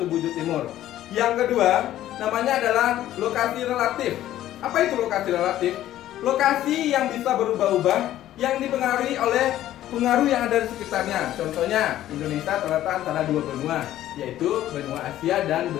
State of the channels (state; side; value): quieter; right; 13.2 dB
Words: bujur timur. Yang kedua namanya adalah lokasi relatif. Apa itu lokasi relatif? Lokasi yang bisa berubah-ubah, yang dipengaruhi oleh pengaruh yang ada di sekitarnya. Contohnya Indonesia terletak antara dua benua, yaitu benua Asia dan